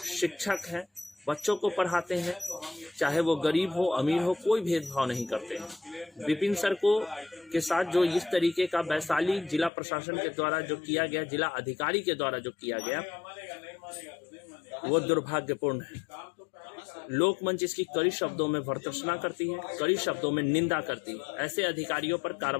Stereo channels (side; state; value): right; drops out; at 9.7 s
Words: शिक्षक हैं, बच्चों को पढ़ाते हैं, चाहे वो गरीब हो अमीर हो, कोई भेदभाव नहीं करते हैं। विपिन सर को के साथ जो इस तरीके का वैशाली जिला प्रशासन के द्वारा जो किया गया, जिला अधिकारी के द्वारा जो किया गया, वो दुर्भाग्यपूर्ण है। लोकमंच इसकी कड़ी शब्दों में भर्त्सना करती है, कड़ी शब्दों में निंदा करती है। ऐसे अधिकारियों पर